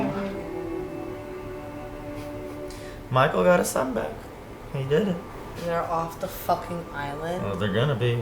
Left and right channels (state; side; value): identical; both; correlation 1.00